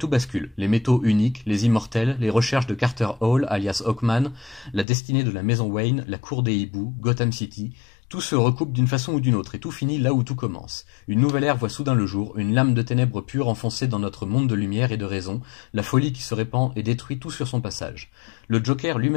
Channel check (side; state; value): right; drops out; at 4.9 s